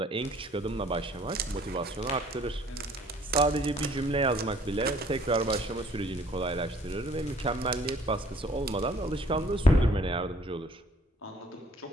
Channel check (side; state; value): both; normal; correlation 0.57